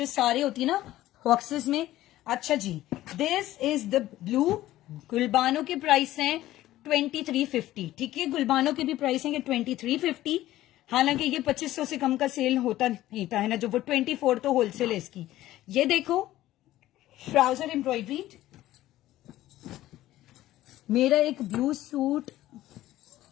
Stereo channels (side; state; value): right; quieter; 15.0 dB